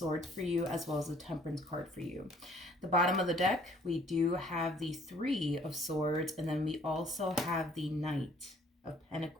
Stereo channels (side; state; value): both; normal; correlation 0.59